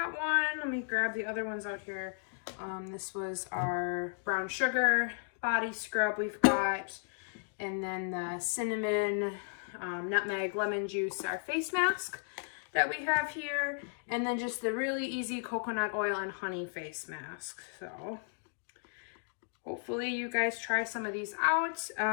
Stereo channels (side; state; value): right; silent; digital silence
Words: one. Let me grab the other ones out here. This was our brown sugar body scrub we've got, and then the cinnamon, nutmeg, lemon juice, our face mask that we have here, and then just the really easy coconut oil and honey face mask. So hopefully you guys try some of these out.